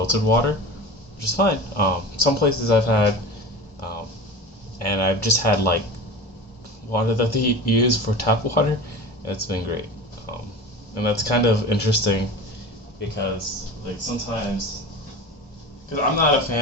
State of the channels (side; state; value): both; normal; correlation 0.32